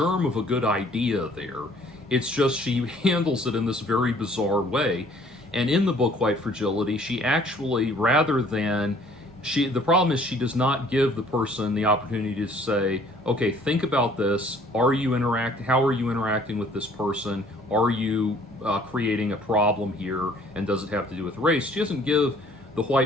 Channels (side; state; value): both; normal; correlation 0.57